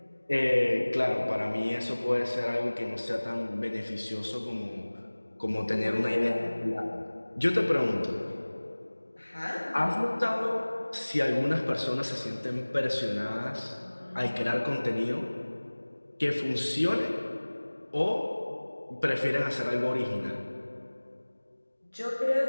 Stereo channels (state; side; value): inverted; both; correlation -1.00